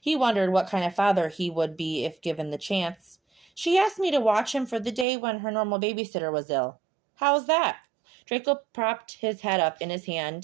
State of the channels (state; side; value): drops out; left; at 5.1 s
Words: He wondered what kind of father he would be if given the chance. "She asked me to watch him for the day when her normal babysitter was ill." "How's that?" Draco propped his head up in his